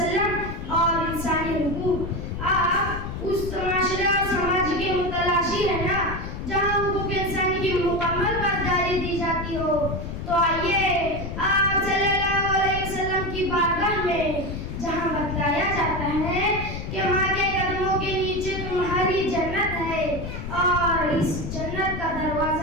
और इंसानी हुकूक। आप उस माशरे और समाज के मुतलाशी है ना जहाँ हुकूक इंसानी की मुकम्मल पासदारी दी जाती हो। तो आइए आप सल्लल्लाहु अलैहि वसल्लम की बारगाह में जहाँ बतलाया जाता है कि माँ के कदमों के नीचे तुम्हारी जन्नत है और इस जन्नत का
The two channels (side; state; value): left; noise; rumble, 6 dB below the sound